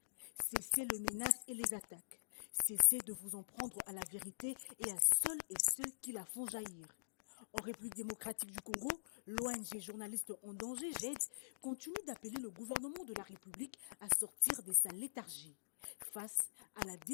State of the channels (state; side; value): quieter; right; 39.6 dB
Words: Cessez les menaces et les attaques. Cessez de vous en prendre à la vérité et à ceux qui la font jaillir. En République démocratique du Congo, l'ONG Journalistes en danger, JED, continue d'appeler le gouvernement de la République à sortir de sa léthargie. Face à la